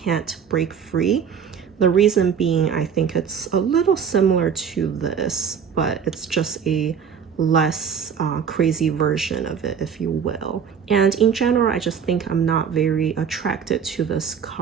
Break Free. The reason being, I think it's a little similar to this, but it's just a less crazy version of it, if you will. And in general, I just think I'm not very attracted to this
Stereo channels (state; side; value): quieter; left; 7.2 dB